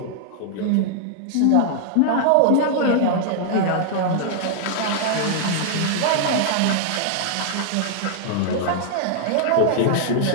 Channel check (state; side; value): different; both; correlation -0.01